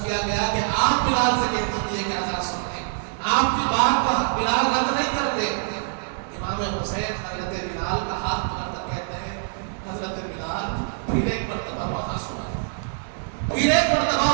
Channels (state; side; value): silent; left; digital silence